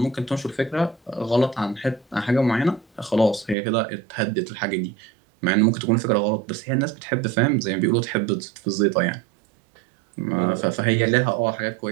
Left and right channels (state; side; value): drops out; left; at 3.6 s